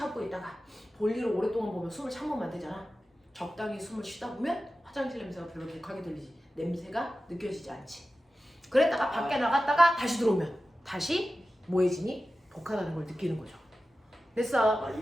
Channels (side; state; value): both; normal; correlation 0.94